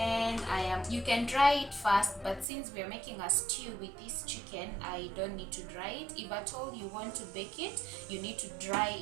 you can dry it first, but since we are making a stew with this chicken, I don't need to dry it. If at all you want to bake it, you need to dry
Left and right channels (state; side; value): drops out; left; at 2.5 s